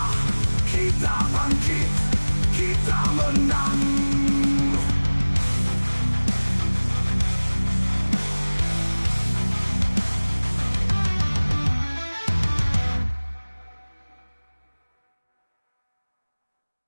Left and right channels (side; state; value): both; inverted; correlation -1.00